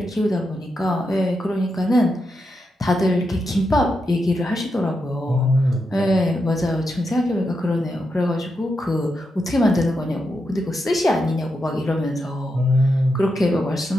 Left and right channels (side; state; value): both; normal; correlation 0.85